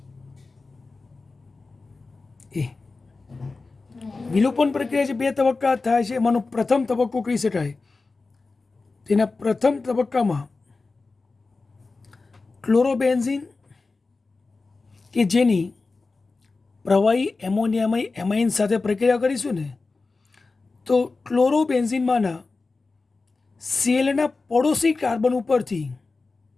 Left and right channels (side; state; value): right; quieter; 3.8 dB